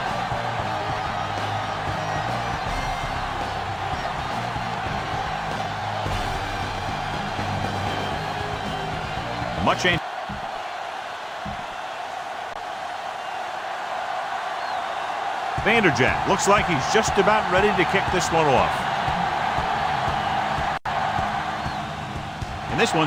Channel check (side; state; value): both; identical; correlation 1.00